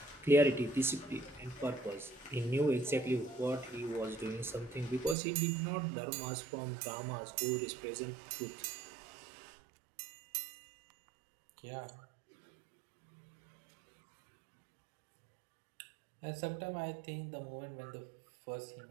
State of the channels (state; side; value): drops out; left; at 5.2 s